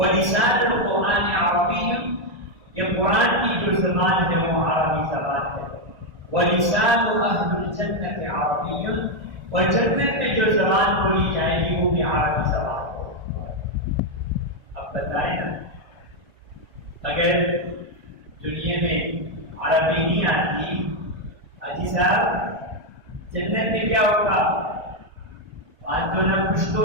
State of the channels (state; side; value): late; left; 1.5 ms